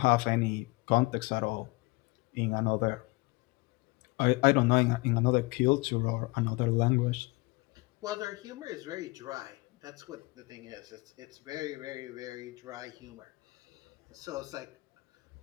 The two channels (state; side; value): quieter; right; 24.7 dB